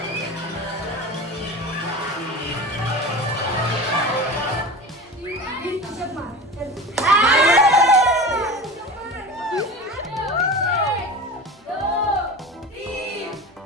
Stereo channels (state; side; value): normal; both; correlation 0.32